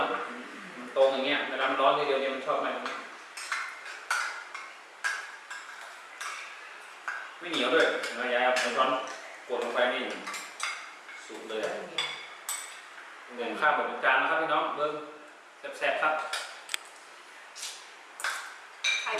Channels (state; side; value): identical; both; correlation 1.00